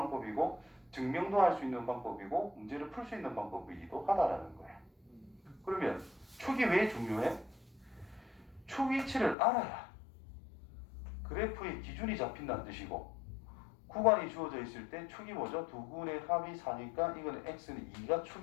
증명도 할 수 있는 방법이고 문제를 풀 수 있는 방법이기도 하다라는 거예요. 그러면 축이 왜 중요해? 축 위치를 알아야 그래프의 기준이 잡힌다는 뜻이고 구간이 주어져 있을 때 축이 뭐죠? 두 군의 합이 4니까 이거는 x는 2가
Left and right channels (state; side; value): drops out; right; at 9.3 s